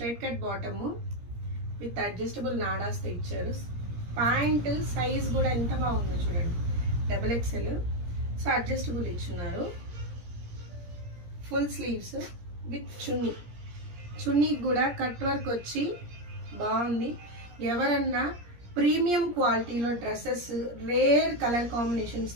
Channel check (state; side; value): late; left; 17 ms